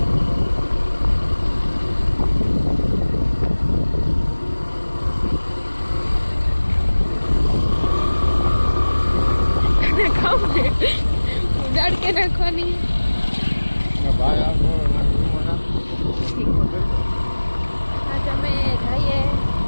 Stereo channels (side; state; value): both; inverted; correlation -1.00